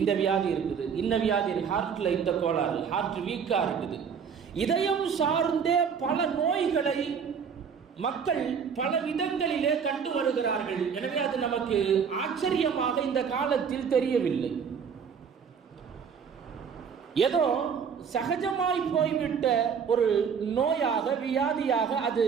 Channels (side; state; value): left; quieter; 6.7 dB